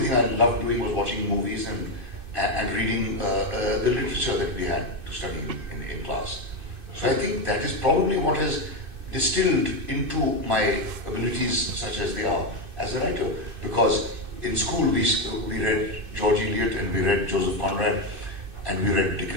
thing I loved doing was watching movies and reading the literature that we had to study in class. So I think that is probably what has distilled into my abilities such as they are as a writer. Because in school we read George Eliot and we read Joseph Conrad and we read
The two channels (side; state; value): left; late; 2.6 ms